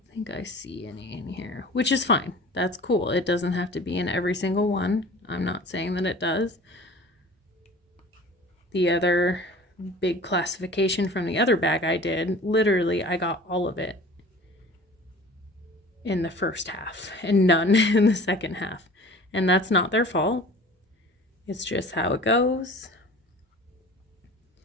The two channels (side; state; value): both; normal; correlation 0.43